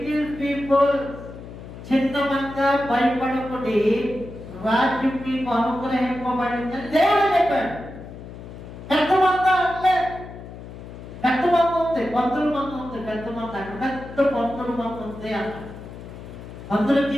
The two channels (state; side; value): noise; left; hum, 13 dB below the sound